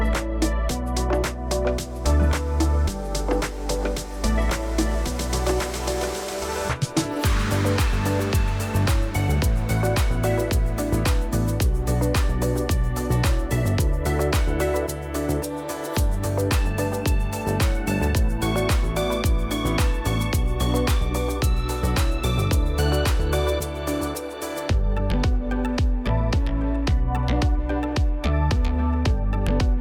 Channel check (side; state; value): both; identical; correlation 1.00